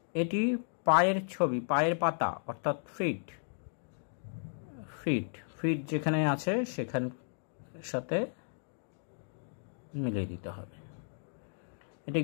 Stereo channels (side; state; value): right; silent; digital silence